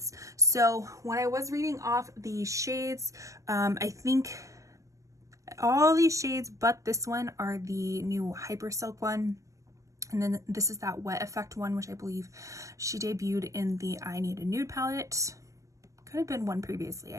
So when I was reading off the shades, I think all these shades but this one are the new Hyper Silk one. And then this is that wet effect one, which I believe she debuted in the I Need a Nude palette. Could have been one previously,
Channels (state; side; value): late; left; 0.16 ms